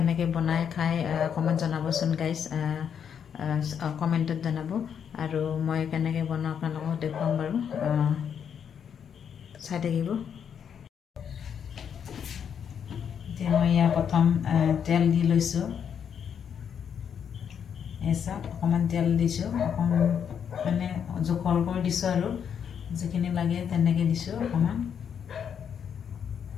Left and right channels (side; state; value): right; quieter; 7.9 dB